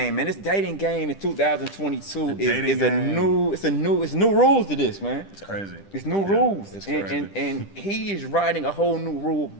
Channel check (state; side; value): late; right; 10 ms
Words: man, this dating game in 2022 is new rules to this, man. It's crazy. It's new rules. it's and, crazy. and he is writing a whole new rule